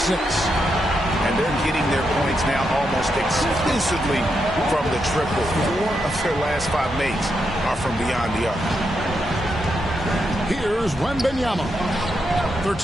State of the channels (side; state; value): both; normal; correlation 0.83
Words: And they're getting their points now almost exclusively from the triple. 4 of their last 5 makes are from beyond the arc. Here's Wembanyama.